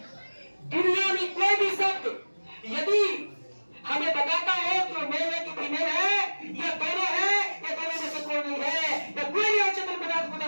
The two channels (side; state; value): both; inverted; correlation -1.00